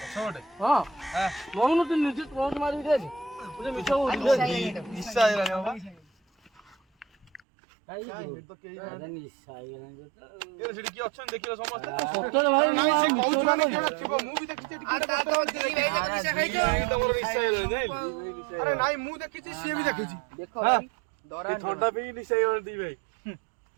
ପଛ ଗୋଟେ? ହଁ ନଉନୁ ତୁ ନିଜେ ଟର୍ଚ୍ଚ ମାରିକି ଦେଖ। ମିଛ ନିଶା ହେଇଗଲାଣି ବାବା। ସେଠି କିଏ ଅଛନ୍ତି ଦେଖିଲ ସମସ୍ତେ? ନାଇଁ ସେ କହୁଛୁ ମାନେ କିଏ ଗୋଟେ ଥିବ। ମୁଁ ବି ଦେଖିଛି ଏଠି କିଏ ଗୋଟେ ବସିଥିଲା। ତମର ନିଶା ହେଇଗଲାଣି ଜାଣିଲୁ? ଆରେ ନାଇଁ ମୁଁ ଦେଖିଛି ସିଏ ବି ଦେଖିଛି। ଥଣ୍ଡା ପିଇକି ନିଶା ହେଇଗଲାଣି ଦି ଭାଇ।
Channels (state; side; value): drops out; left; at 7.4 s